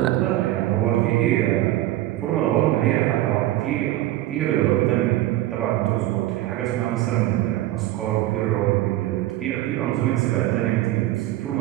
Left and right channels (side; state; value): left; quieter; 15.3 dB